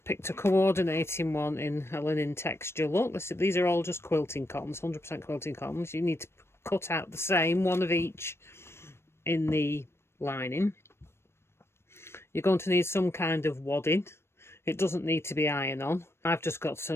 picked a coordinating one in a linen texture look. These are all just quilting cottons, 100% quilting cottons. You need to cut out the same, one of each in the lining. You're going to need some kind of wadding. It doesn't need to be iron-on. I've just got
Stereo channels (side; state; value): right; late; 0.12 ms